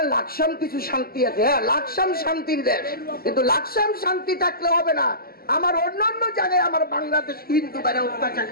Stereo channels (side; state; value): right; late; 0.44 ms